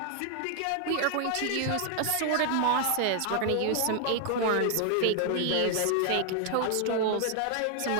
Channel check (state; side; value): different; both; correlation 0.00